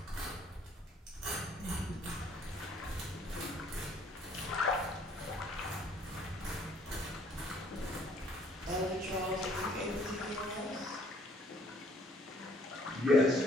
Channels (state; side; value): normal; both; correlation 0.61